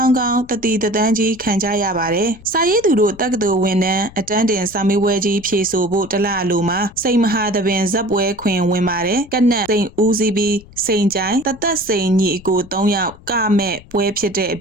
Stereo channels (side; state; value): left; noise; rumble, 22 dB below the sound